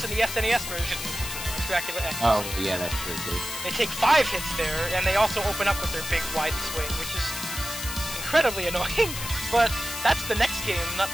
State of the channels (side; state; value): left; noise; hiss, 7 dB below the sound